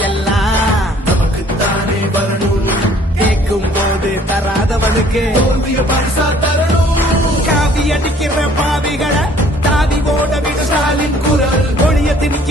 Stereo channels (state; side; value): normal; both; correlation 0.57